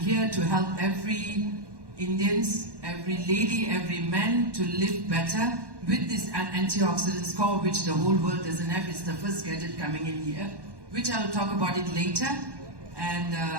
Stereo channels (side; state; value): left; late; 1.1 ms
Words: to help every Indians, every lady, every man to live better with this antioxidant score, which the whole world doesn't have. It's the first gadget coming in here, which I'll talk about it later. And